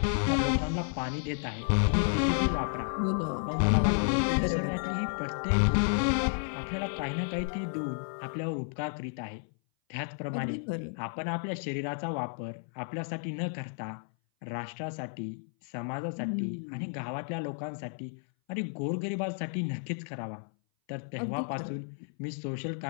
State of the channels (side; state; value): right; silent; 56 dB below the other